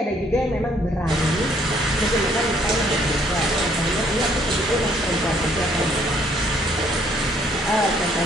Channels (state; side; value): normal; both; correlation 0.65